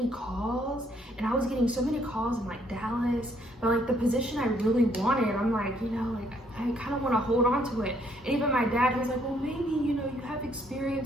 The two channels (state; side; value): normal; both; correlation 0.68